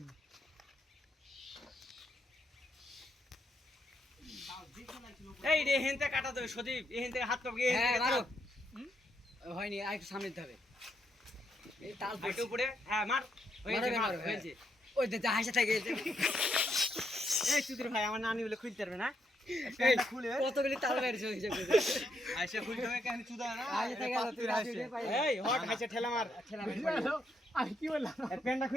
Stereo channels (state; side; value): normal; both; correlation 0.78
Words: এই রে হেনতে কাটা দেবে সদীপ এই হেনতে হাত পাবি হ্যাঁ মারো হয়নি আর একটু সামনে দিতে হবে এই তাল একটু উপরে হ্যাঁ মার মারো হয়েছে ওই যে হাসা থাকে এই সুধীর ভাই আমার নানি বলে খুলতে পারবে না খুলে কতগুলি তাল বেরিয়েছে হিসাব করে আইসা খুলতে হবে কেন চুদা না আইসা থেকে গেল তুই রাশি পাই এই হট হাইসা ঠেলা মার আমি কি বললাম এর প্যান্টটা